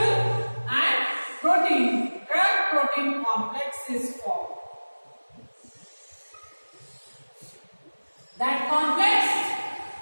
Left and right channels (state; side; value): inverted; both; correlation -1.00